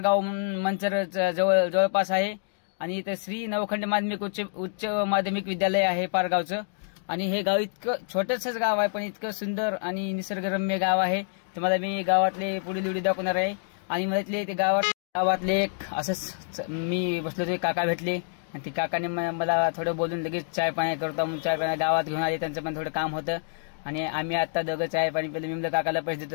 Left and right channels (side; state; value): right; silent; digital silence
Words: मंचर जवळपास आहे आणि इथं श्री नवखंड माध्यमिक उच्च माध्यमिक विद्यालय आहे पारगावचं. आणि हे गाव इतकं छोटंसंच गाव आहे पण इतकं सुंदर आणि निसर्गरम्य गाव आहे. तुम्हाला मी गावातले पुढील व्हिडिओ दाखवणार आहे. आणि मला ते गावातले एक असंच मी बसलो ते काका भेटले आणि ते काकाने मला थोडं बोलून लगेच चाय पाणी करतो म्हणून चाय पाणी गावात घेऊन आले. त्यांचं पण थोडं काम होतं आणि आम्ही आता दोघं चाय पाणी पहिले. मी म्हणलं काकाला पैसे